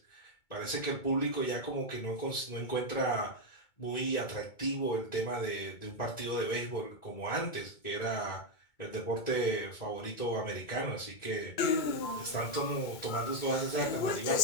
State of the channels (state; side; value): late; right; 2.2 ms